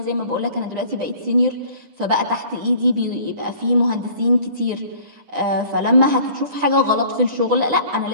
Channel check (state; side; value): late; left; 9.8 ms